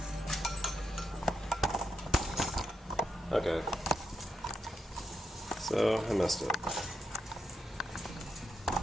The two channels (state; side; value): normal; both; correlation 0.83